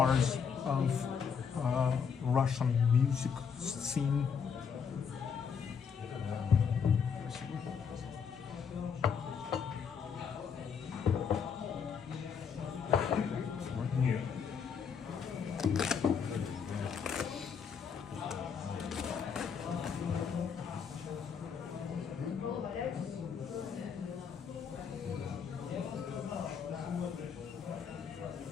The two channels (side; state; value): right; quieter; 6.6 dB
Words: of Russian music scene.